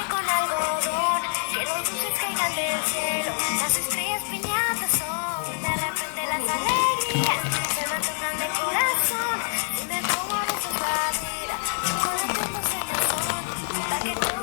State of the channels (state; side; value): silent; right; digital silence